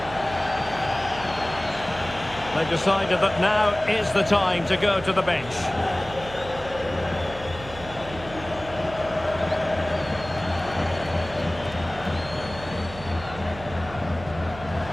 They've decided that now is the time to go to the bench.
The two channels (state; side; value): noise; right; hum, 14 dB below the sound